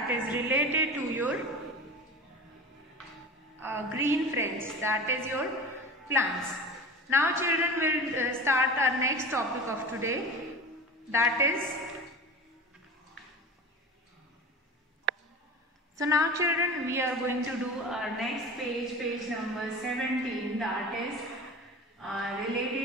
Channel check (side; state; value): both; normal; correlation 0.33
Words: is related to your green friends, that is your plants. Now children will start our next topic of today, that is, so now children we are going to do our next page, page number 17, that is